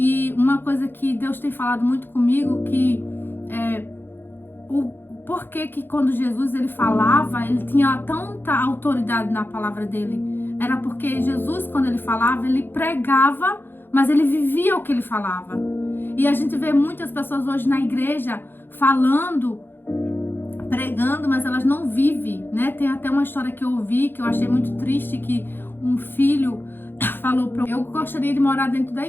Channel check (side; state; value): right; late; 0.10 ms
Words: uma coisa que Deus tem falado muito comigo, que por que quando Jesus ele falava, ele tinha tanta autoridade na palavra dele? Era porque Jesus, quando ele falava, ele pregava, mas ele vivia o que ele falava. E a gente vê muitas pessoas hoje na igreja falando, pregando, mas elas não vivem, né? Tem até uma história que eu ouvi, que eu achei muito triste, que um filho falou eu gostaria de morar dentro da